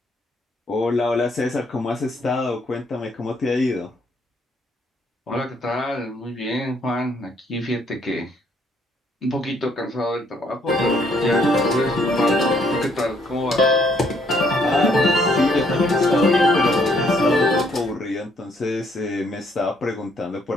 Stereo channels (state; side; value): normal; both; correlation 0.68